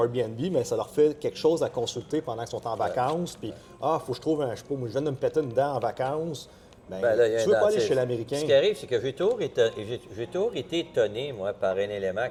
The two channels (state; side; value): identical; both; correlation 1.00